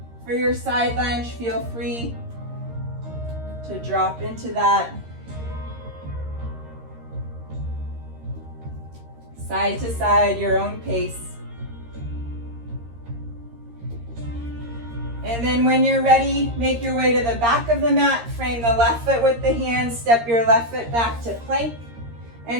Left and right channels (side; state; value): left; late; 13 ms